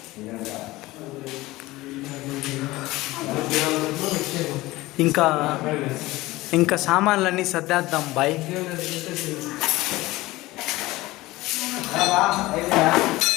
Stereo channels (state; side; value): quieter; right; 19.0 dB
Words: ఇంకా సామాన్లన్నీ సర్దేద్దాం బాయ్.